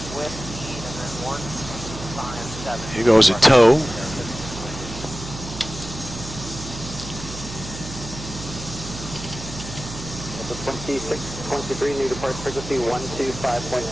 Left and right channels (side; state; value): right; noise; hum, 11 dB below the sound